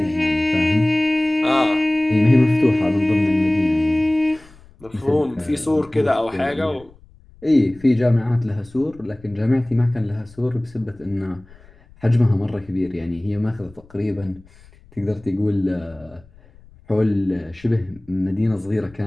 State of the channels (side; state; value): left; noise; rumble, 25 dB below the sound